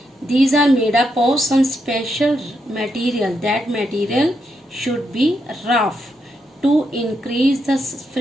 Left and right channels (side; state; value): both; normal; correlation 0.81